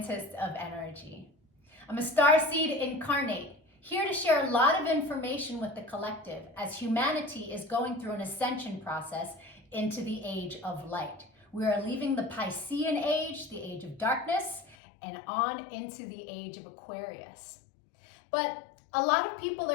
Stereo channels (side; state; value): right; drops out; at 14.8 s